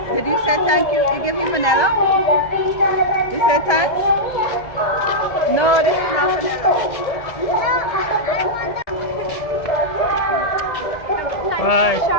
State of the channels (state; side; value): late; right; 1.7 ms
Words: Did you say thank you? You give me vanilla? You said thanks? No, this is not vanilla. Bye.